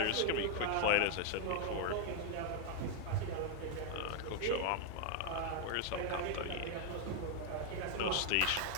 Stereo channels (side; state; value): both; different; correlation 0.00